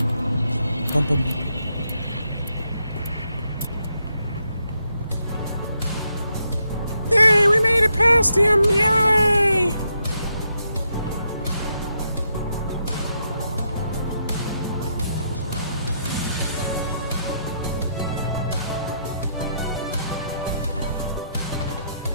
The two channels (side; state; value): both; inverted; correlation -0.79